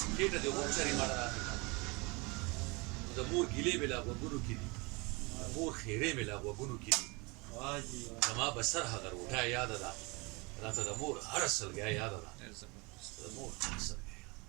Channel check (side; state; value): left; quieter; 27.5 dB